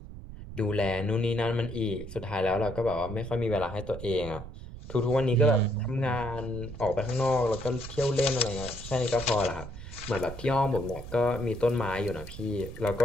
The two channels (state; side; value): noise; right; rumble, 12 dB below the sound